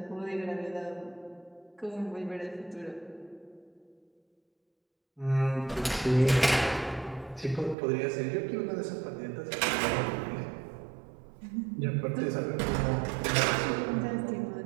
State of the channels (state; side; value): drops out; left; at 7.8 s